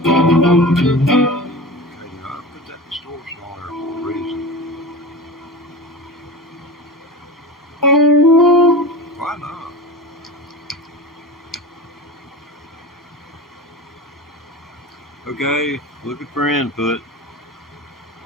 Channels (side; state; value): both; normal; correlation 0.31